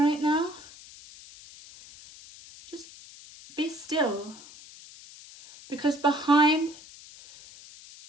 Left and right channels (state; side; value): noise; left; hiss, 19 dB below the sound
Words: now, just be still. Because behind